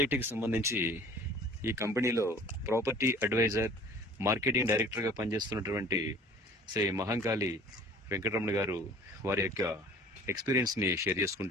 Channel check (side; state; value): both; normal; correlation 0.48